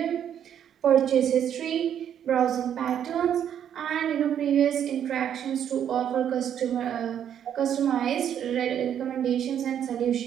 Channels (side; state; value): left; quieter; 9.4 dB